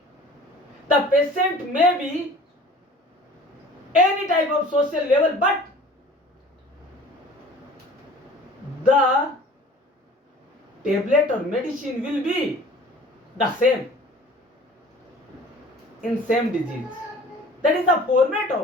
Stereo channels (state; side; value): normal; both; correlation 0.46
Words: the patient may be any type of social level, but the tablet or medicine will be the same in same disease. That is the format